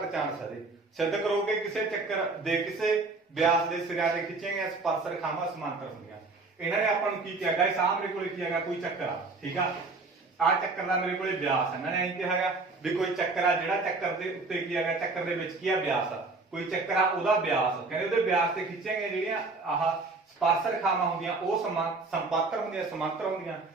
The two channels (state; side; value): quieter; left; 3.7 dB